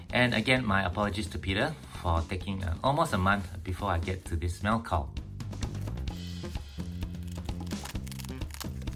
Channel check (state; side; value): identical; both; correlation 1.00